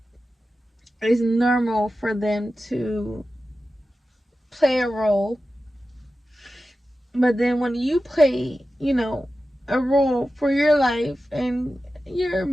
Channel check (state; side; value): normal; both; correlation 0.93